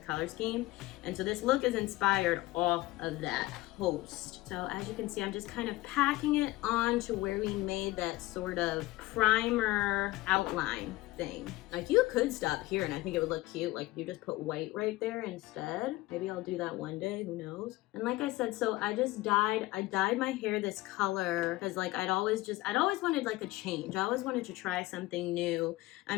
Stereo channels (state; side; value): quieter; right; 18.9 dB